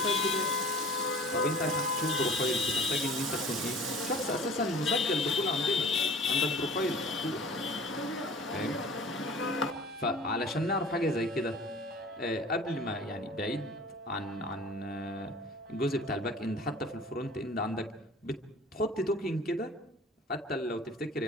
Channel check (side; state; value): both; normal; correlation 0.44